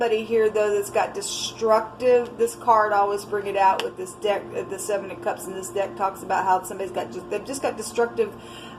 here though that's got destructive. This card, I always bring it out with this deck, the Seven of Cups, and this deck talks about how somebody's got they've just got destructive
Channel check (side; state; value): both; identical; correlation 1.00